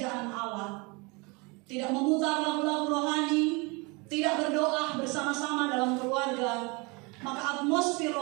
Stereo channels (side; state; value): left; quieter; 28.2 dB